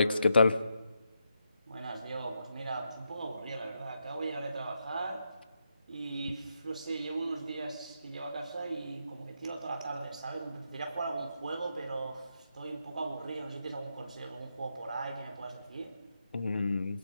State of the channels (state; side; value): inverted; both; correlation -0.82